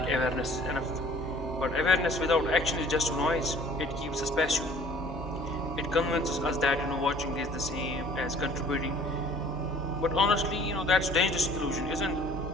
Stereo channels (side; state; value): both; normal; correlation 0.52